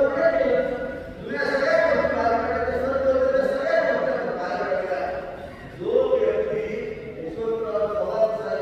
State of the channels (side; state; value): both; identical; correlation 1.00